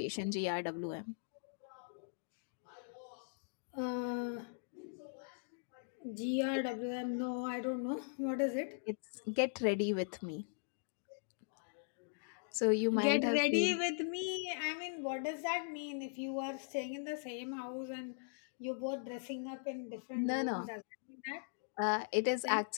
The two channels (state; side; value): silent; right; digital silence